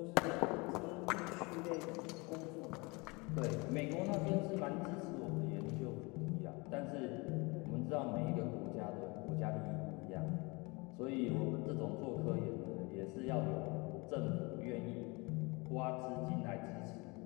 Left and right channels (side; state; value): right; quieter; 27.0 dB